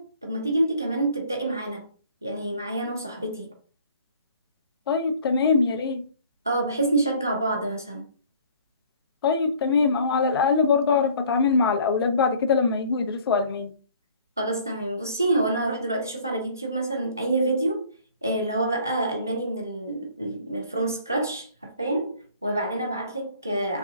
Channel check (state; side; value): inverted; both; correlation -0.54